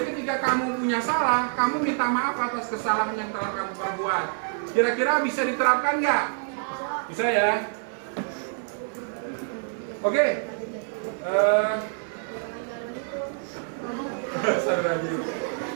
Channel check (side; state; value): left; silent; 60 dB below the other